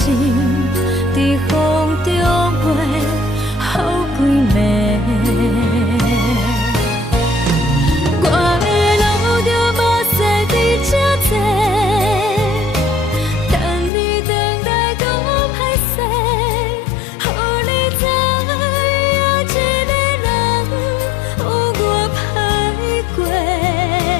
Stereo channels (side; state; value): right; drops out; at 13.9 s